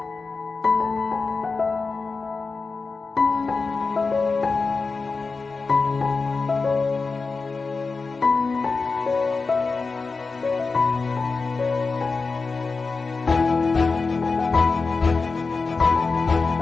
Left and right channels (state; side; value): quieter; right; 4.3 dB